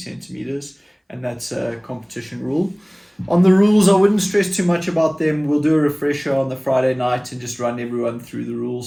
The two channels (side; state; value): both; identical; correlation 1.00